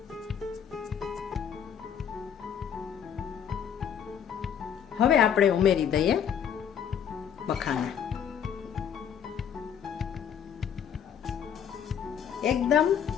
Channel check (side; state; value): right; quieter; 8.4 dB